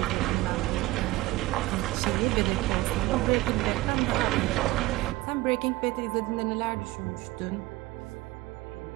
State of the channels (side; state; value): left; quieter; 18.8 dB